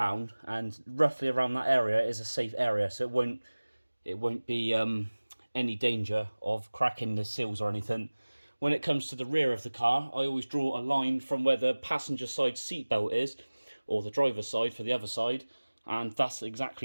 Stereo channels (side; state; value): both; inverted; correlation -1.00